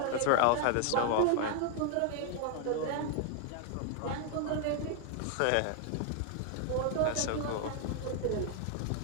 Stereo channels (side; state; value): both; different; correlation 0.00